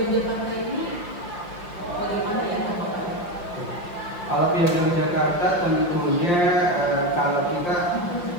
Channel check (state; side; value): late; right; 5.7 ms